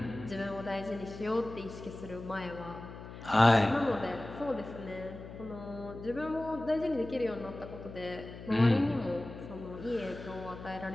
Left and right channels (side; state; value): left; noise; hum, 13 dB below the sound